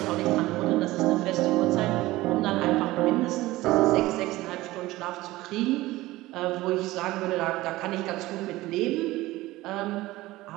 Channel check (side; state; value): left; quieter; 18.2 dB